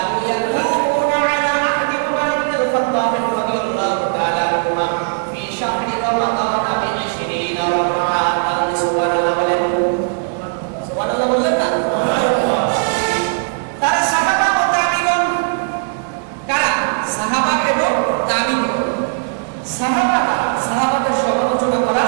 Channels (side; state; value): left; silent; 68 dB below the other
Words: يكونون على عهد عمر بن الخطاب رضي الله تعالى عنهما في شهر رمضان ب20 ركعة। সুবহানাল্লাহ বলেন। সুবহানাল্লাহ বললেন না? তারা সাহাবা ও তাবিঈন। কারা? সাহাবা এবং তাবিঈন। সাহাবাদের সমালোচনা করা